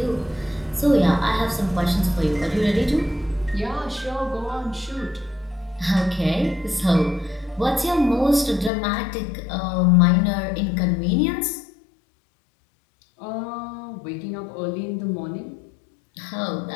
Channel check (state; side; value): drops out; right; at 8.7 s